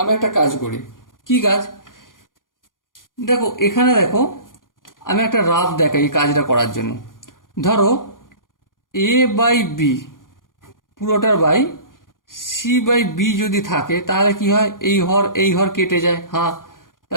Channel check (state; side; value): late; right; 0.90 ms